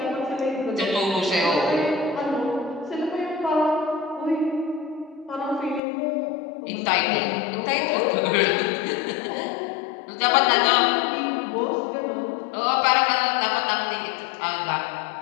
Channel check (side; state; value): right; drops out; at 5.8 s